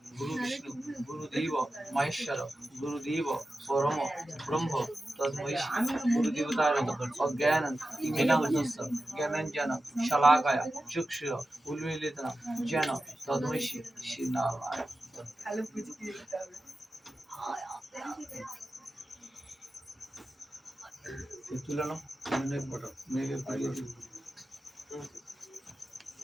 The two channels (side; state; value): both; normal; correlation 0.93